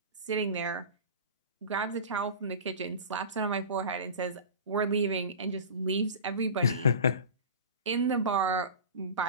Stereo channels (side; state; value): both; inverted; correlation -0.33